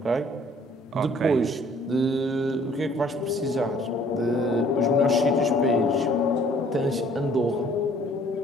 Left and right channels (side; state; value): both; normal; correlation 0.58